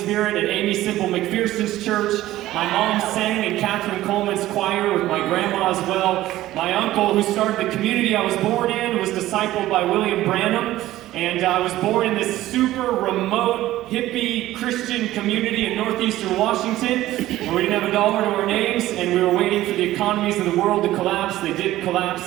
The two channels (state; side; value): quieter; left; 15.2 dB